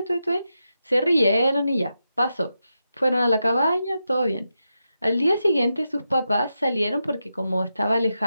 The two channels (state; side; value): inverted; both; correlation -0.87